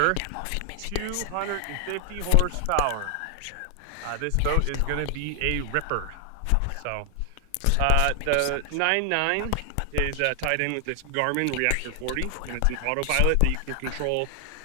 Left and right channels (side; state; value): both; different; correlation 0.00